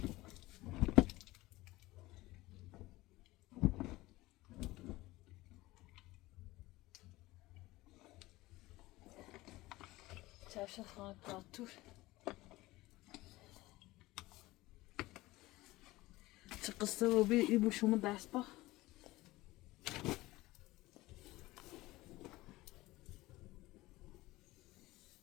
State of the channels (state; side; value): quieter; right; 19.1 dB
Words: چشم خواهد پاتور چه قصه رو بی ای بو شما دست با